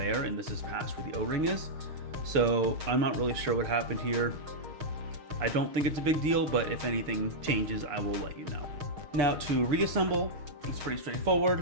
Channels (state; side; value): late; left; 6.4 ms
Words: and this is past where the O-ring is. So I'm not really sure what happened here. I don't think it's a big deal, but if anything changes, I will let you know. Now to reassemble, it's pretty